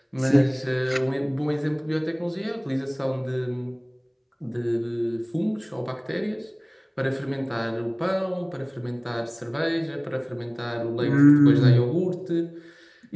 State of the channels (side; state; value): both; identical; correlation 1.00